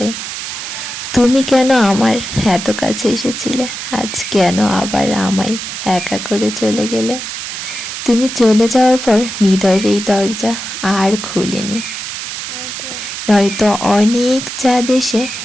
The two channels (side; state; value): right; noise; hiss, 7 dB below the sound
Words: তুমি কেন আমার এত কাছে এসেছিলে, আজ কেন আবার আমায় একা করে চলে গেলে? তুমি চলে যাওয়ার পর হৃদয়ের এই দরজা আর খুলেনি, নয়তো অনেক চাঁদ এসে